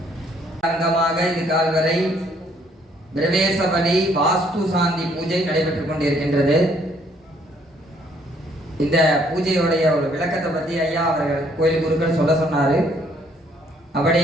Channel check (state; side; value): normal; both; correlation 0.65